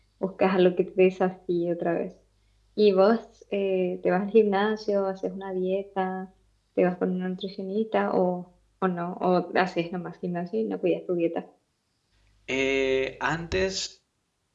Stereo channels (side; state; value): both; identical; correlation 1.00